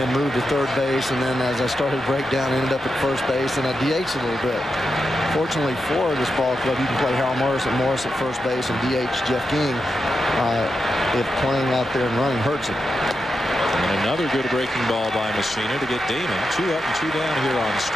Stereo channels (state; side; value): normal; both; correlation 0.87